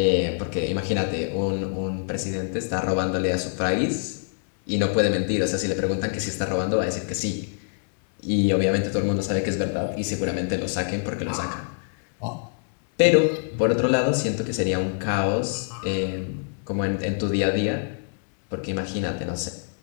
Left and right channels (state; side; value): silent; right; digital silence